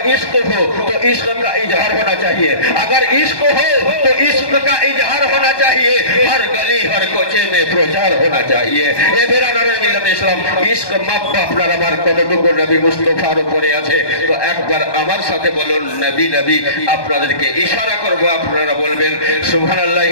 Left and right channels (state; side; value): late; right; 1.2 ms